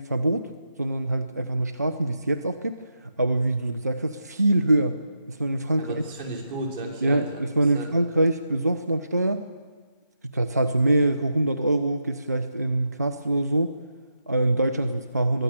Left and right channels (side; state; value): both; inverted; correlation -0.85